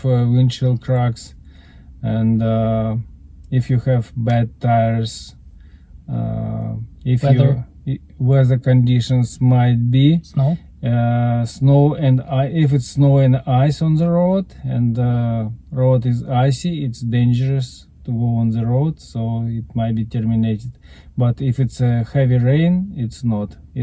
windshield cracks, and if you have bad tires, if weather conditions might be Snow? Snow and if it's snow and ice on the road, and the road is icy, it's dangerous to go on the road, so it might be terminated. But if it's a heavy rain, it's not.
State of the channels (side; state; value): both; identical; correlation 1.00